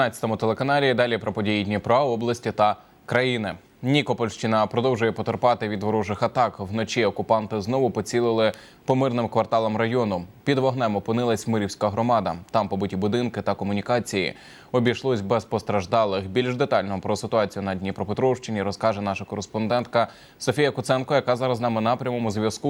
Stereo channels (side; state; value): both; identical; correlation 1.00